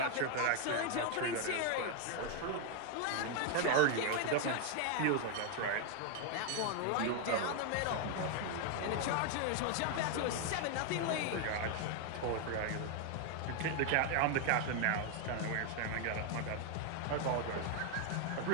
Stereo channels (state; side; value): different; both; correlation 0.00